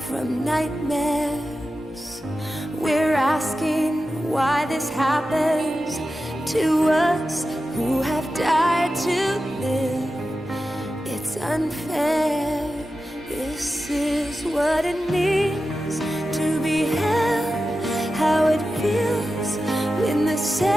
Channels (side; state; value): both; normal; correlation 0.92